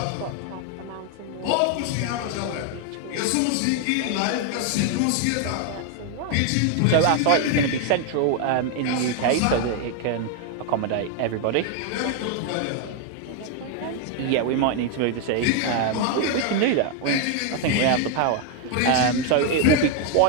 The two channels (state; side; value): different; both; correlation 0.01